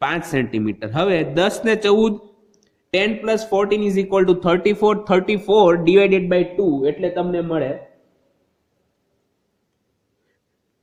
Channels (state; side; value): identical; both; correlation 1.00